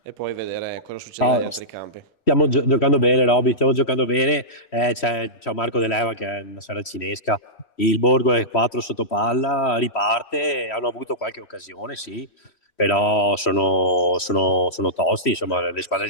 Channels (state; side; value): late; right; 3.1 ms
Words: e poi vedere cosa succede negli altri campi. Stiamo giocando bene, Roby, stiamo giocando bene. C'è Marco De Leva che è una saracinesca. Il Borgo è 4 sotto palla, riparte, hanno avuto qualche occasione, sì, però sono tosti, insomma, le squadre